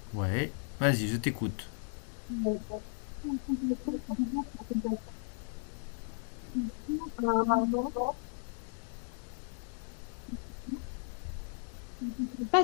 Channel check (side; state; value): right; silent; 54 dB below the other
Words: Ouais, vas-y, je t'écoute. pas